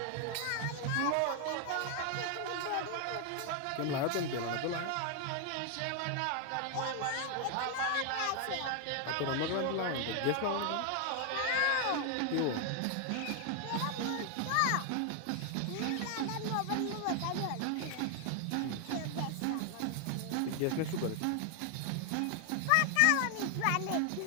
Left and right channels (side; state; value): both; different; correlation 0.00